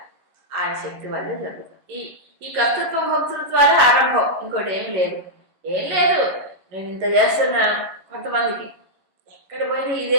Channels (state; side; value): late; left; 11 ms